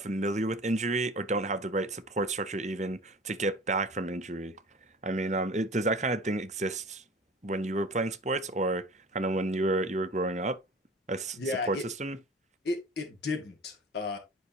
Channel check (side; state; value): both; normal; correlation 0.41